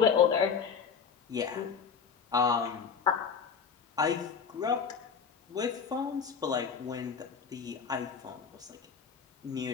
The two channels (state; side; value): quieter; right; 6.3 dB